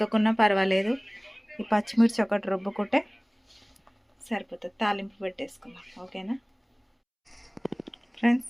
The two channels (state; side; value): identical; both; correlation 1.00